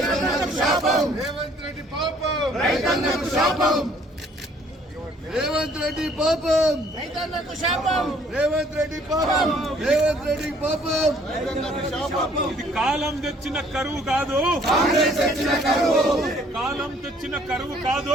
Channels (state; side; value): normal; both; correlation 0.60